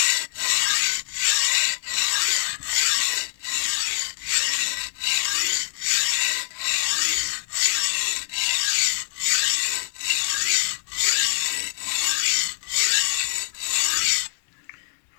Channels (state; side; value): silent; right; 62 dB below the other